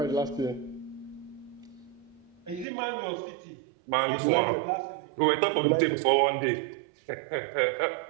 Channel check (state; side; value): drops out; left; at 2.7 s